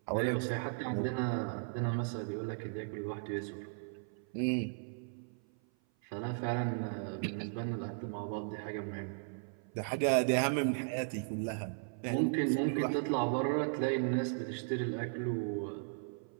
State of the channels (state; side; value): silent; left; 54 dB below the other